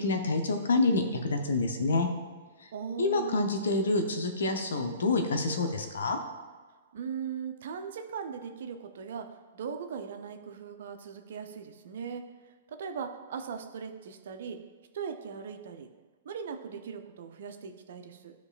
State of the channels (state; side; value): inverted; both; correlation -0.51